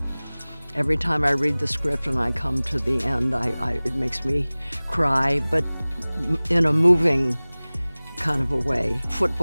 Every time I read the script and I come to the end, it makes me cry, but in a moving kind of a way.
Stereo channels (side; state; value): both; inverted; correlation -1.00